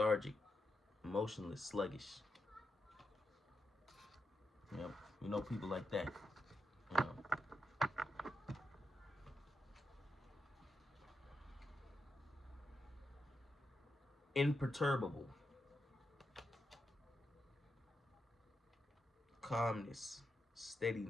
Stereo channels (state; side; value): normal; both; correlation 0.85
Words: emotionless, sluggish. You know people like that. You know. Imperturbable. Calmness,